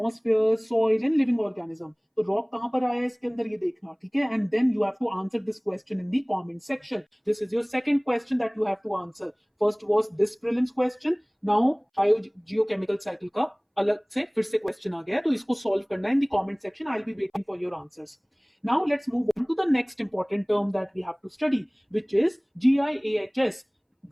soil, and living organism. तो rock कहां पर आया है इसके अंदर ये देखना, ठीक है. And then you have to answer this question in the comment section. This is your second question that you have to answer. First was this prelims question. Now biogeochemical cycle का अलग से फिर से क्वेश्चन आ गया है, तो इसको solve करना है इन the comment section. I will be waiting for your answers. Now let's move on to the next important term that we have to study, which is GIAHS,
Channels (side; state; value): both; identical; correlation 1.00